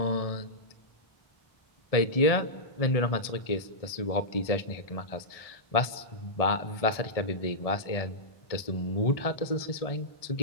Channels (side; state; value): right; late; 1.7 ms